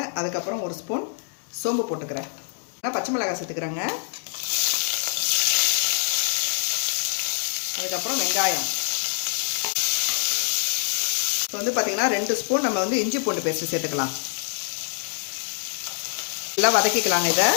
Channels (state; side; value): silent; right; digital silence